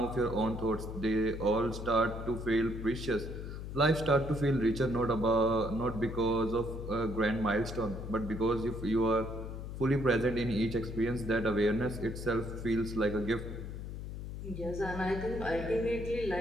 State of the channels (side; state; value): left; noise; hum, 8 dB below the sound